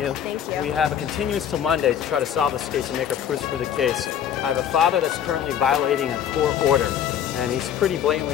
Thank you. We have a continuance till Monday to try to solve this case and make our proofs for the case. I have a father that's currently violating a court order, and he's pretty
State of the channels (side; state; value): right; quieter; 9.3 dB